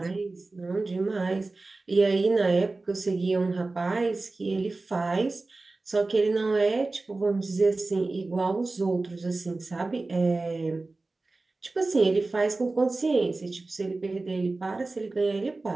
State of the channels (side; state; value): left; quieter; 3.4 dB